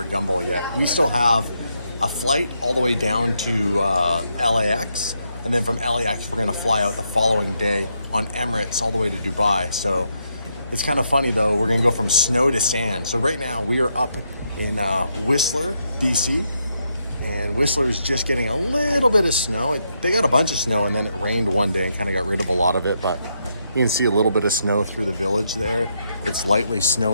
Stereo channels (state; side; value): inverted; both; correlation -0.79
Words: Gumball yet. We still have a flight all the way down to LAX, and then from LAX we're going to fly out the following day on Emirates all the way to Dubai. So it's kind of funny though, we're going to go from snow to sand. So right now we are up in Whistler, DC. And Whistler's just getting a little bit of snow. They got a bunch of snow and then it rained one day and kind of got rid of a lot of it, but you can see a little bit of snow through the village there. It's lightly